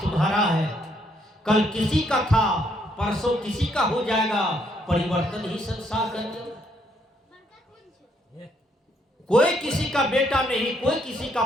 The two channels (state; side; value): normal; both; correlation 0.72